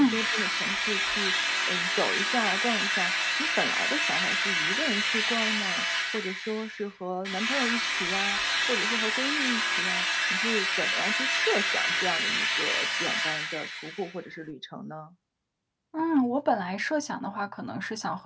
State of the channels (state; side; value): identical; both; correlation 1.00